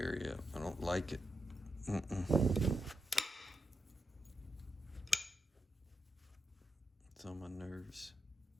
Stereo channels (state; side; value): normal; both; correlation 0.86